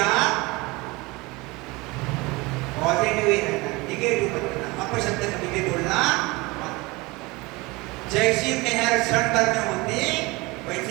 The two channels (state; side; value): quieter; left; 23.7 dB